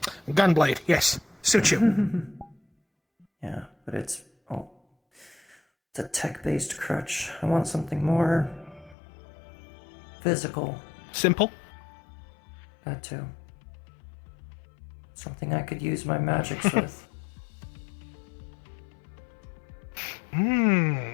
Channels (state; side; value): drops out; right; at 9.0 s